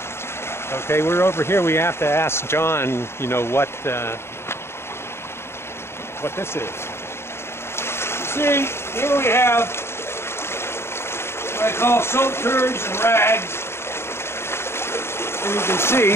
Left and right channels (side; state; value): right; late; 0.12 ms